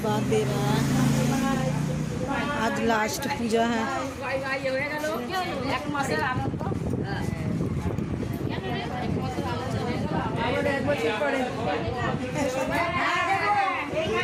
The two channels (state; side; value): identical; both; correlation 1.00